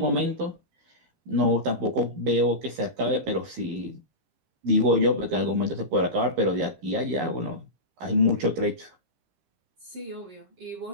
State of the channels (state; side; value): late; left; 14 ms